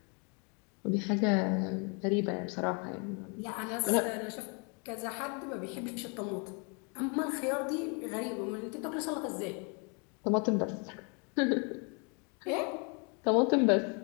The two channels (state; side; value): quieter; right; 35.2 dB